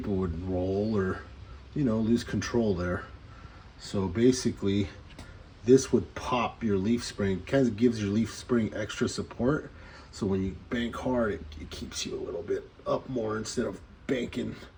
would roll or, you know, lose control there. So basically this would pop your leaf spring, kind of gives your leaf spring extra support, so when you bank hard, it keeps you a little bit up more instead of banking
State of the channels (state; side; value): identical; both; correlation 1.00